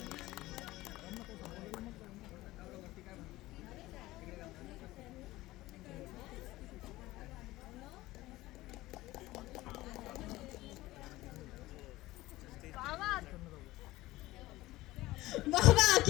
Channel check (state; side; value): quieter; right; 17.9 dB